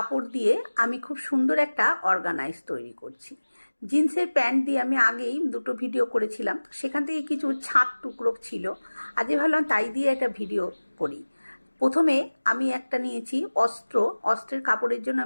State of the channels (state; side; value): inverted; both; correlation -1.00